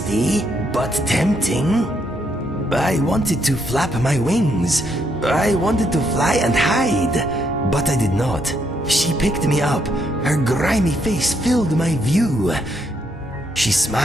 but tempting." I wanted to flap my wings. I wanted to fly and hide, but I did not. She picked me up. Her grimy face filled my view. She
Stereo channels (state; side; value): normal; both; correlation 0.75